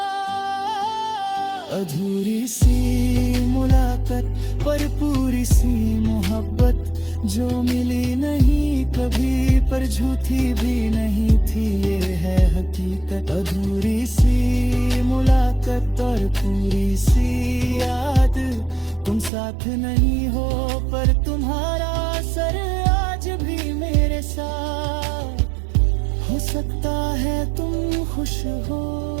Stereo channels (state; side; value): drops out; left; at 19.3 s